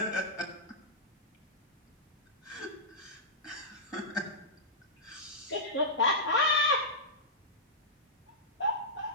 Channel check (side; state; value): both; normal; correlation -0.13